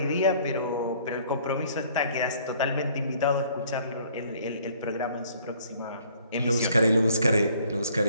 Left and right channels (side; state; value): both; inverted; correlation -0.59